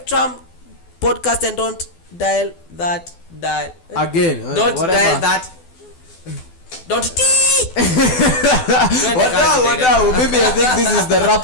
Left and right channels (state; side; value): late; right; 12 ms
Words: podcast, and don't dial that again. Don't whatever. dial that. Don't Wadau, maybe I think this is the wrap